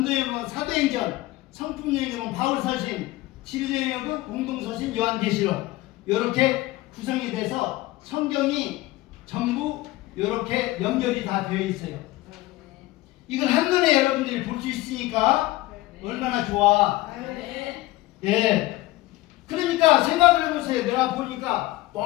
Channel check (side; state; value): right; quieter; 18.0 dB